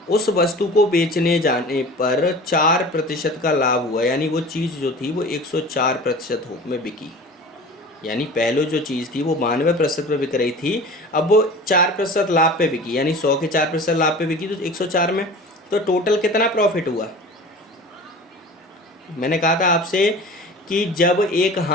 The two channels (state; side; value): normal; both; correlation 0.39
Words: उस वस्तु को बेचने जाने पर 4% का लाभ हुआ, यानी वो चीज़ जो थी वो 104% में बिकी। यानी पहले जो चीज़ थी वो 92% पे बिक रही थी, अब वो 4% लाभ पे बिकी, यानी 100 के 4% लाभ पे बिकी तो 104 में। तो टोटल कितना प्रॉफिट हुआ? मैंने कहा था आपसे कि जब एक